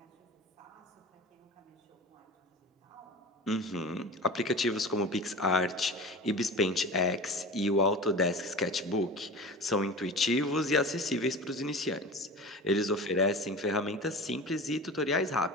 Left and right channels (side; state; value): both; normal; correlation 0.33